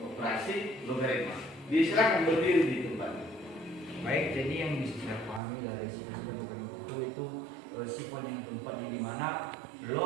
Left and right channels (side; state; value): left; drops out; at 5.4 s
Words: operasi logaritma. Silakan berdiri di tempat. Baik, jadi yang bisa saya pahami dari sifat logaritma itu sifat yang keempat di mana